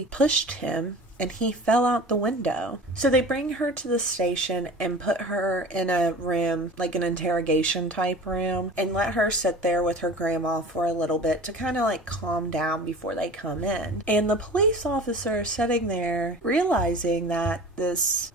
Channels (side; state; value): both; normal; correlation 0.39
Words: pushed him and he fell out the window. So they bring her to the station and put her in a room, like an interrogation type room, and let her sit there with her grandma for a little bit to kind of like calm down before they come in. And the police officer sitting there realizing that this